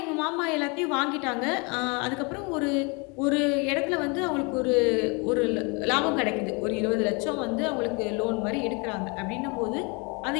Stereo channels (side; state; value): right; quieter; 30.9 dB